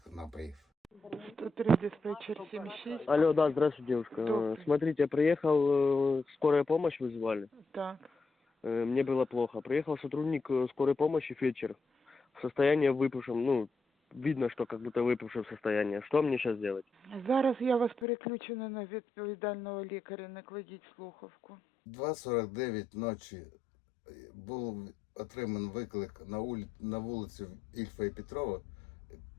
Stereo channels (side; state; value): right; drops out; at 18.1 s